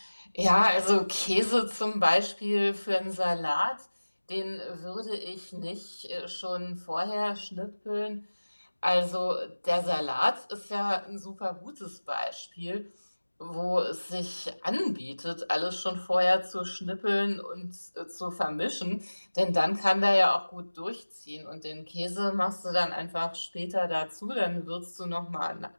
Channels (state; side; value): inverted; both; correlation -1.00